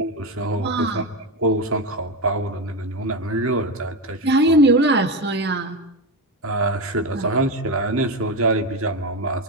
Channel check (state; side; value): normal; both; correlation 0.15